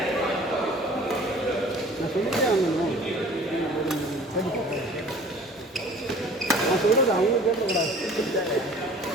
நான் சொல்கிறது அவங்க கேட்கக்கூடாது.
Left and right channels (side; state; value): both; normal; correlation 0.48